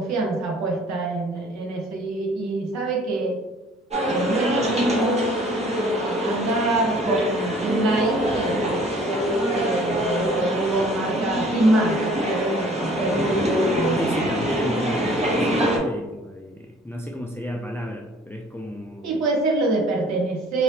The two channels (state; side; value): normal; both; correlation 0.53